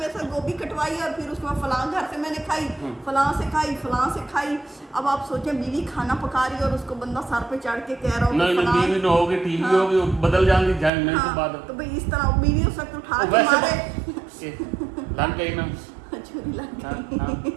साथ गोभी कटवाई और फिर उसमें फलां घर से मैंने खाई, फलां से खाई। अब आप सोचें, बीवी खाना पका रही है और उसको बंदा सर पे चढ़ के कह रहा हो नहीं बीवी न होगी, टीवी होगी, बदल जाएंगी जाने के बाद। तो भाई इस तरह बीवी उस वक्त उठा के मारे, लग गई ना छुरी लग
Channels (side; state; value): left; drops out; at 10.9 s